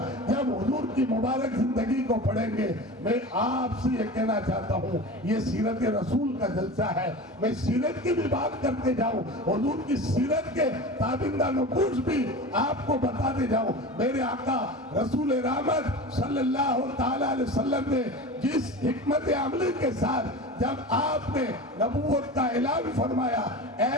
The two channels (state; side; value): normal; both; correlation 0.32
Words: جب حضور کی مبارک زندگی کو پڑھیں گے، میں آپ سے یہ کہنا چاہتا ہوں، یہ سیرت رسول کا جلسہ ہے، میں سیرت کی بھی بات کرتے جاؤں، حضور کی سیرت کے تابندہ نقوش بھی آپ کو بتاتے جاؤں۔ میرے آقا رسول رحمت صلی اللہ تعالی علیہ وسلم نے جس حکمت عملی کے ساتھ جب آپ نے نبوت کا اعلان فرمایا،